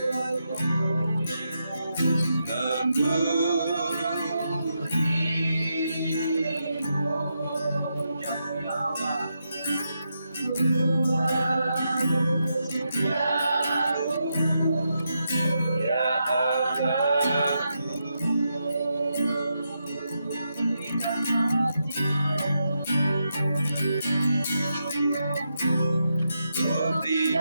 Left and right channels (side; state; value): both; inverted; correlation -0.84